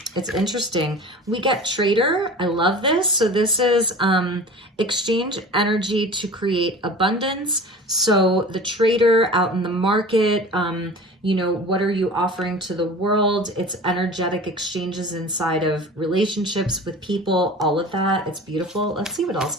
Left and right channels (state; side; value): normal; both; correlation 0.38